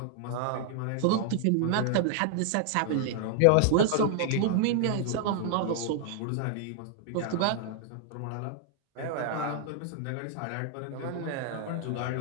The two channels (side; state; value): both; different; correlation 0.00